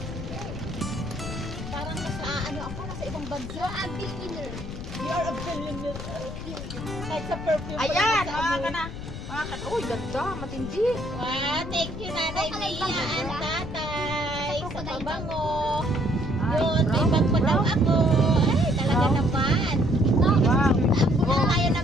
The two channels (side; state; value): left; noise; rumble, 9 dB below the sound